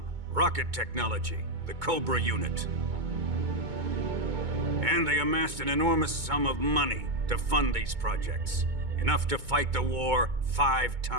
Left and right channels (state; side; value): late; left; 2.2 ms